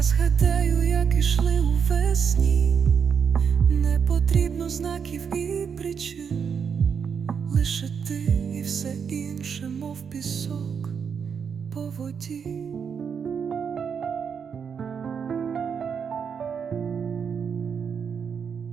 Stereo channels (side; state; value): left; quieter; 6.8 dB